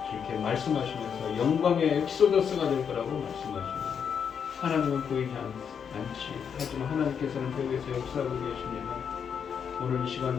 이렇게 말씀하시면서 영광의 엑소더스가 될 거라고 말씀하십니다. 하나님은 보이지 않지. 하지만 하나님께서는 배후에서 역사하고 계십니다. 오늘 이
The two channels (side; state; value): right; quieter; 7.3 dB